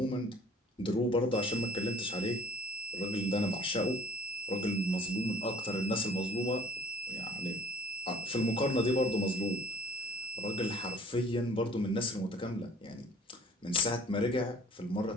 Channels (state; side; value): normal; both; correlation 0.52